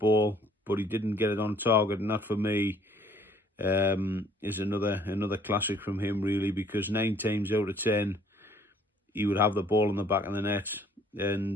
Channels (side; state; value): both; normal; correlation 0.59